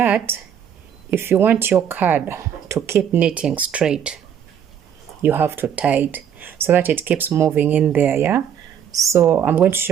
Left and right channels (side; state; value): left; quieter; 8.8 dB